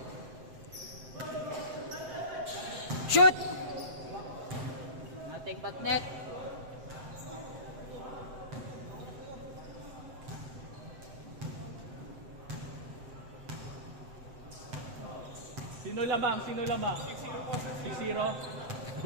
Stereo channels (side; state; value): left; late; 7.8 ms